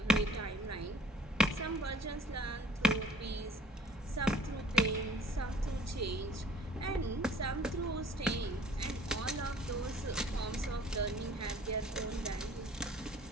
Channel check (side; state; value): both; normal; correlation 0.53